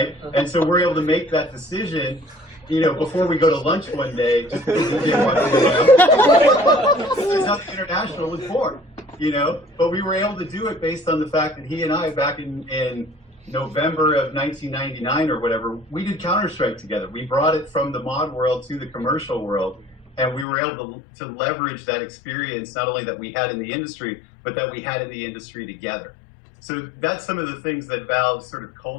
And so we're able to make that decision, before we go to lunch one day. Just because we didn't want to That's how the International was born, But we were able to do it based on the fact that he and I, back in November of 1999 or whatever, we did Counter-Strike together. We brought it from the mod world to the commercial world, and we were able to leverage that experience, not only that we had in the industry, but that we had in the industry together. So that's some of the things that Valve's sort of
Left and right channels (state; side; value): drops out; right; at 20.5 s